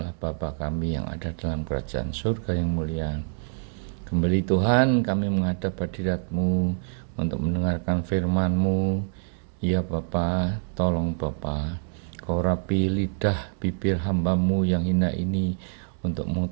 Bapa kami yang ada dalam kerajaan surga yang mulia, kembali Tuhan kami menghadap hadirat-Mu untuk mendengarkan firman-Mu. Ya Bapa, tolong Bapa, Kau rapi lidah bibir hamba-Mu yang hina ini untuk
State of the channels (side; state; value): left; silent; 61 dB below the other